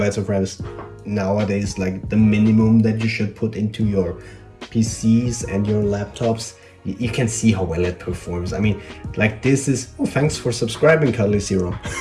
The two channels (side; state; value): both; identical; correlation 1.00